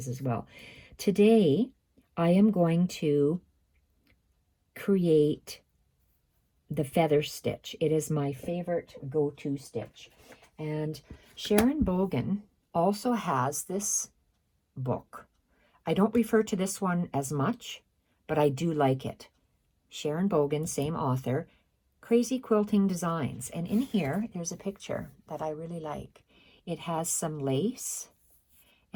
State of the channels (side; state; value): both; identical; correlation 1.00